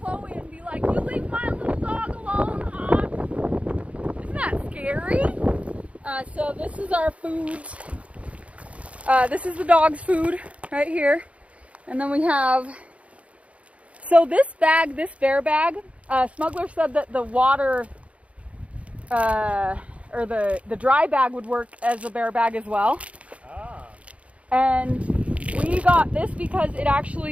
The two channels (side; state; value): left; late; 0.064 ms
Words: and be like, "You leave my little dog alone, hawk." Isn't that scary? So this is our foods. This is the dog's food right here. And then we have, so this bag, this bear bag, Smuggler said that the water, or the dry bag would work as a bear bag as well. Ah. And we got this because